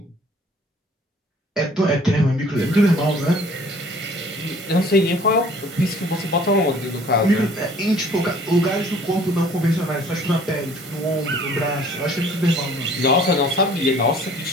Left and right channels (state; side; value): normal; both; correlation 0.54